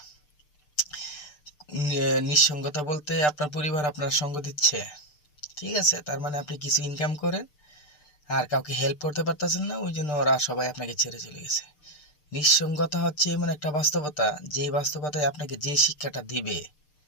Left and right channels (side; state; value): right; late; 6.7 ms